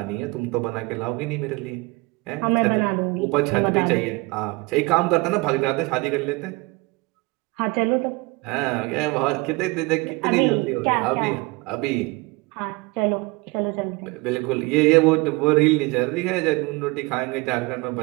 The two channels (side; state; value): left; quieter; 24.7 dB